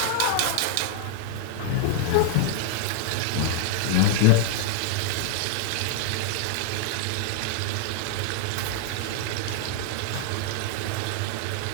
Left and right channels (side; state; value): both; different; correlation 0.00